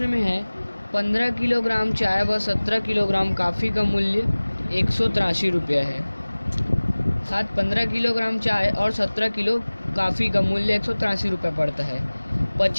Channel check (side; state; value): both; inverted; correlation -1.00